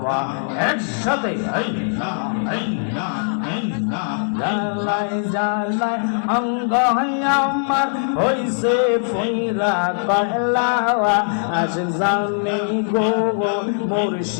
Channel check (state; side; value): silent; right; digital silence